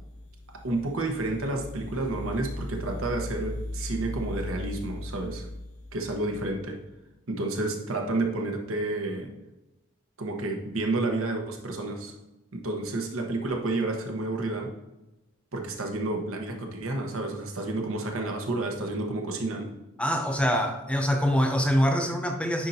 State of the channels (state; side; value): normal; both; correlation 0.60